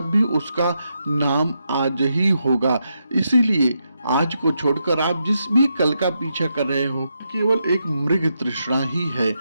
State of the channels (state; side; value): inverted; both; correlation -0.83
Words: भी उसका नाम आज ही होगा। इसीलिए आज को छोड़कर आप जिस भी कल का पीछा कर रहे हो, केवल एक मृग तृष्णा ही है।